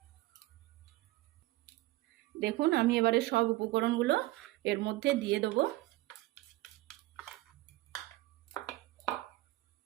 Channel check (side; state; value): left; quieter; 18.7 dB